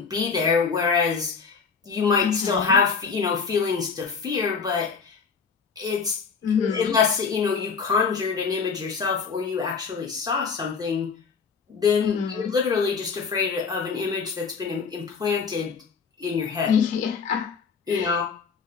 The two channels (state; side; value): quieter; right; 5.5 dB